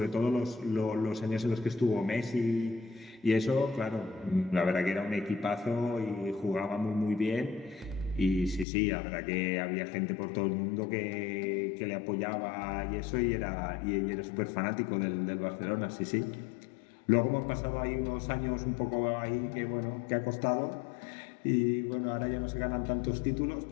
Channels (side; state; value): right; drops out; at 8.7 s